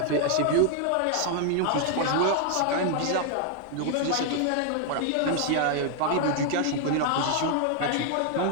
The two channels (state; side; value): different; both; correlation 0.00